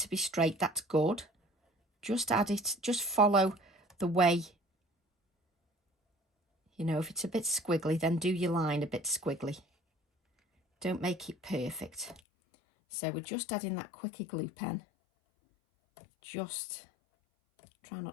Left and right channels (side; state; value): right; drops out; at 12.2 s